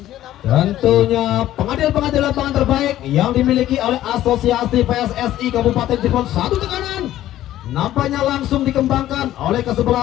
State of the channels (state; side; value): quieter; right; 13.5 dB